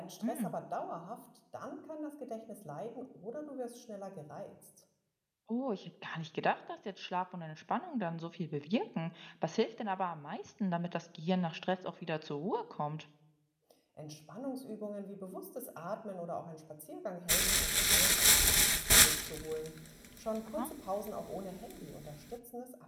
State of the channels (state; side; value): identical; both; correlation 1.00